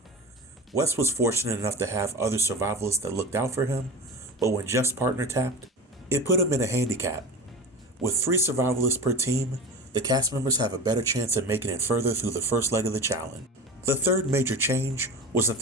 Wes was fortunate enough to have other survivalists that looked out for him, but when Jeff's partner tapped, it put him in a handicap. With 3 survivalists per team, the cast members have a better chance of making it further through the first leg of the challenge. The third major change was that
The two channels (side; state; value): both; normal; correlation 0.30